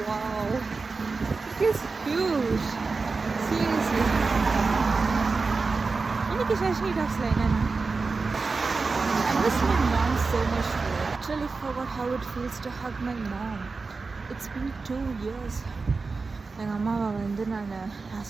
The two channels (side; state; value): left; quieter; 4.2 dB